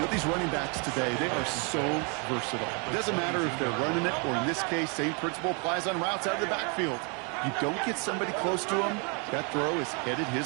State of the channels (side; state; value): left; quieter; 34.6 dB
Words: these running backs today, they are so versatile. It doesn't matter if they're running it, or in this case, same principle applies on routes out of the backfield. You don't get somebody close to him, that throw is headed